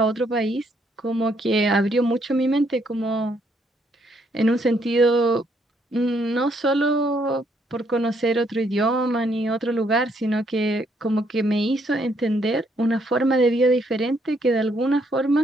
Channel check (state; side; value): normal; both; correlation 0.71